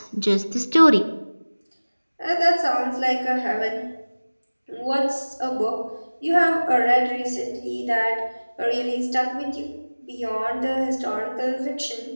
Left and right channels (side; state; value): both; inverted; correlation -1.00